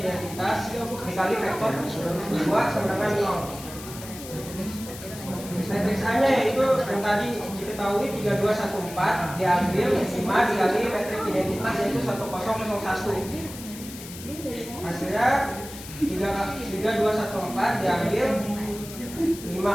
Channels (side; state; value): left; noise; hiss, 14 dB below the sound